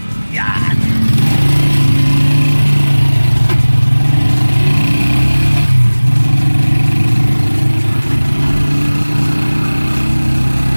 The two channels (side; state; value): both; inverted; correlation -1.00